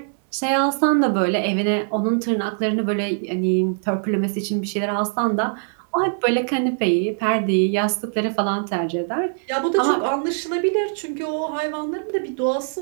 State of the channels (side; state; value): left; silent; 64 dB below the other